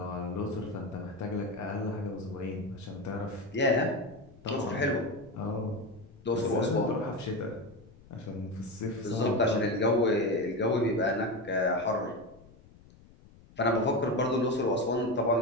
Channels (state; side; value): noise; left; rumble, 24 dB below the sound